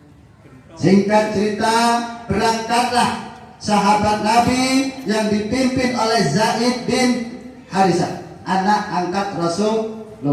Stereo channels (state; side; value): identical; both; correlation 1.00